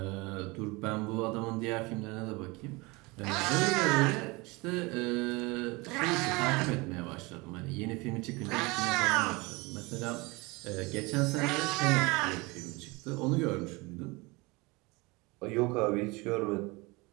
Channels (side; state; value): left; quieter; 24.9 dB